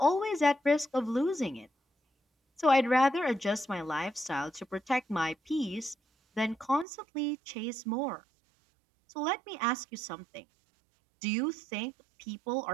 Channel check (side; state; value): left; drops out; at 6.9 s